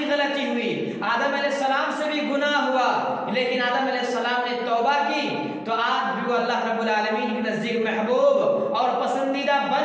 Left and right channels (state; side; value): identical; both; correlation 1.00